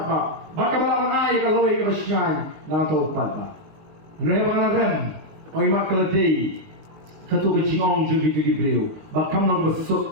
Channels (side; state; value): left; late; 19 ms